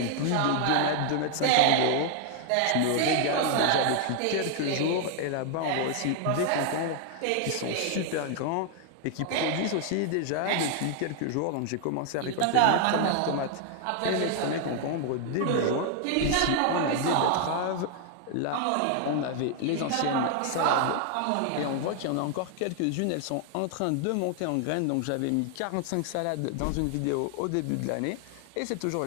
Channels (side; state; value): both; different; correlation 0.00